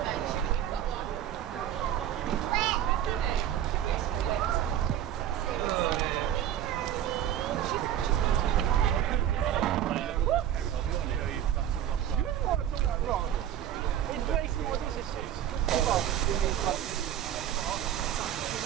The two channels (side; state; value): left; quieter; 10.9 dB